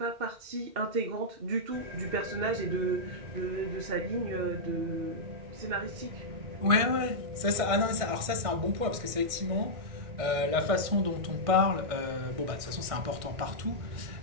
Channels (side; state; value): left; late; 1.6 ms